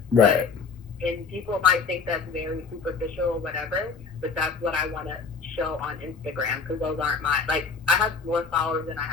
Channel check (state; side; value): quieter; right; 5.0 dB